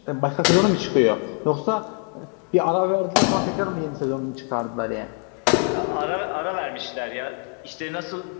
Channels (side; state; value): right; quieter; 37.4 dB